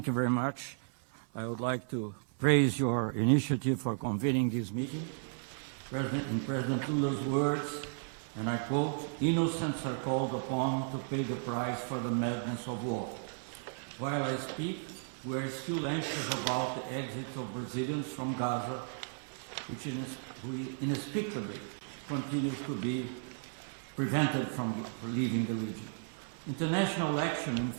you very much. I would like to praise your initiative for convening this meeting. President Lula's words, and I quote, "Innocents are called upon to pay the price for the madness of war." While I speak, we are still anxious about the exit of Brazilians from Gaza, which inexplicably continues to be prevented from leaving the region. International action in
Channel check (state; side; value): silent; left; 55 dB below the other